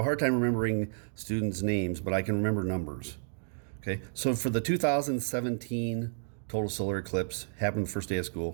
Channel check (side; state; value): left; silent; digital silence